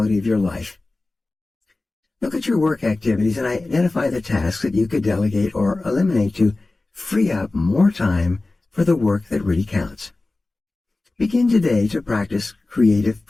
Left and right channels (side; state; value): right; quieter; 3.1 dB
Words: of your life. Look at your work activities and identify the tasks that you could delegate or eliminate to free up more time for the work that really counts. Begin today to practice creative